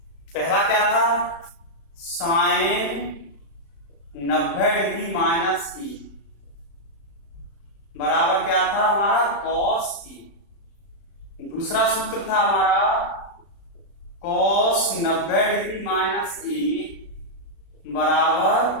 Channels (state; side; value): late; right; 36 ms